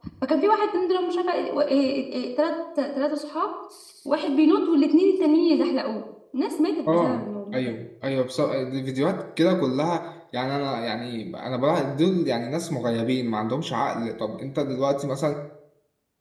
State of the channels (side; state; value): both; identical; correlation 1.00